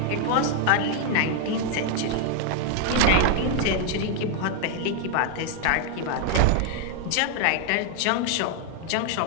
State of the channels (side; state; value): both; different; correlation 0.00